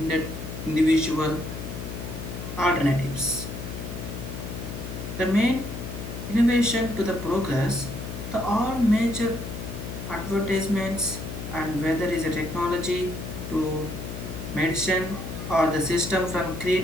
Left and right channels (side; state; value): left; noise; hum, 7 dB below the sound